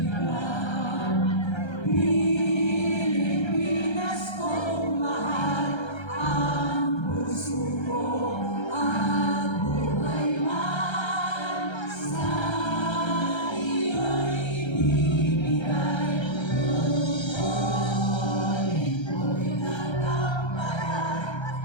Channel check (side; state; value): right; late; 1.3 ms